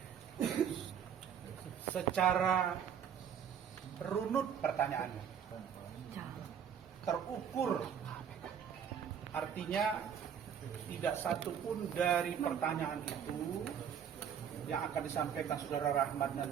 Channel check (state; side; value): quieter; left; 8.2 dB